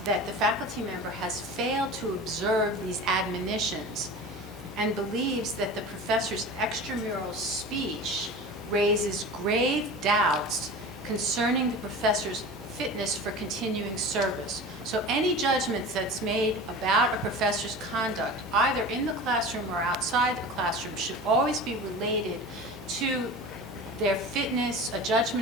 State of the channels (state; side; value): noise; right; hum, 20 dB below the sound